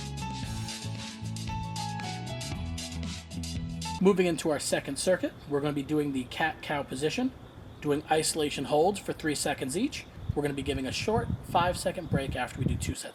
Moving into our second circuit, we're going to be doing the cat-cow position, doing isolation holds for 3 seconds each. We're going to be giving a short 5-second break after we do 2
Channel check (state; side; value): identical; both; correlation 1.00